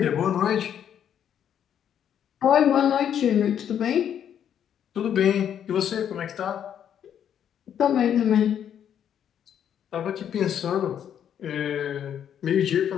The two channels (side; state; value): right; quieter; 9.3 dB